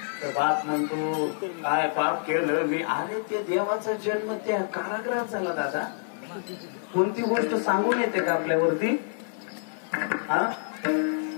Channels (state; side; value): silent; right; digital silence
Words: तर बाप म्हणतो काय पाप केलं मी. अरे ते देवाचा जन्म त्या कारागृहात झाला दादा, कोणती गोष्ट सांगून येते का आपल्यावरती? हा,